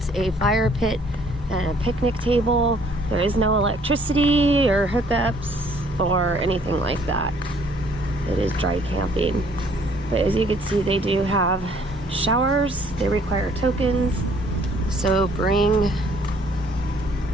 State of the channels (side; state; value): both; normal; correlation 0.61